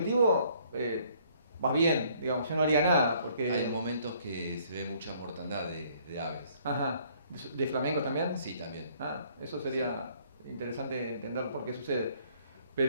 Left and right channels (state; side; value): inverted; both; correlation -0.62